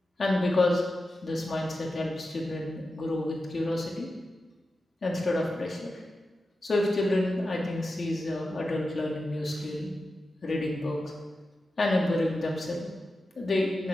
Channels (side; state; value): both; normal; correlation 0.91